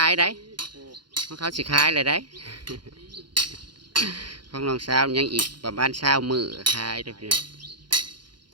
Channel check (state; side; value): late; left; 0.71 ms